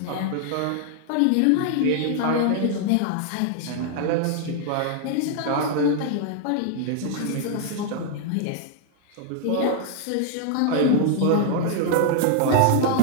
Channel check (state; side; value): different; both; correlation 0.00